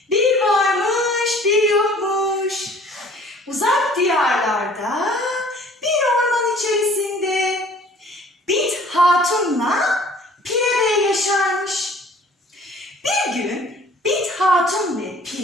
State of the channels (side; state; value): both; normal; correlation 0.52